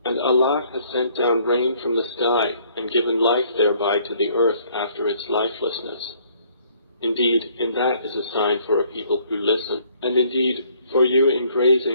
And Allah has sent down rain from the sky, and given life thereby to the earth after its lifelessness. Indeed, in that is a sign for a people who listen. And indeed, for you in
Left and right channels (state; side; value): inverted; both; correlation -0.62